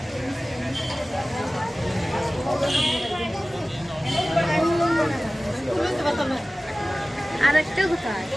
আর একটা কোথায়?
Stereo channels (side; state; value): both; normal; correlation 0.97